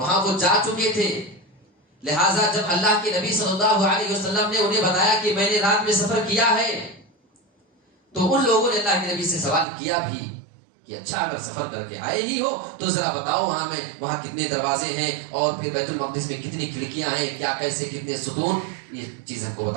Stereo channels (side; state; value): left; drops out; at 9.7 s